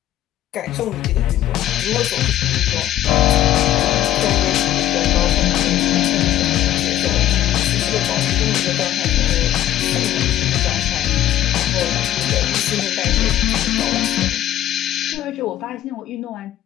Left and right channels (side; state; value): right; quieter; 12.7 dB